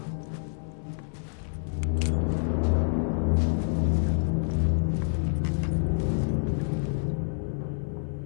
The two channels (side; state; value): right; silent; 57 dB below the other